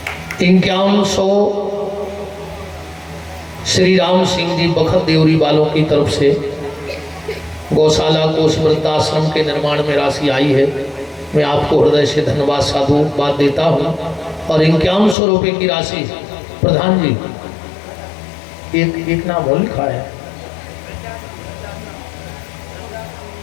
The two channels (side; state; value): right; drops out; at 15.2 s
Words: 5100 श्री राम सिंह जी बखत देवरी वालों की तरफ से गौशाला को उस वृद्धाश्रम के निर्माण में राशि आई है। मैं आपको हृदय से धन्यवाद साधुवाद देता हूँ। और 5100 रुपये की राशि प्रधान जी एक नाम और लिखा है,